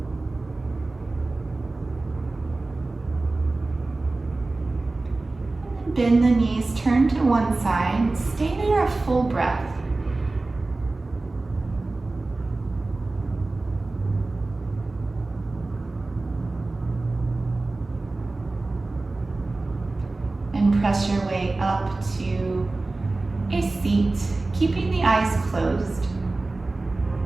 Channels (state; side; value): quieter; left; 3.2 dB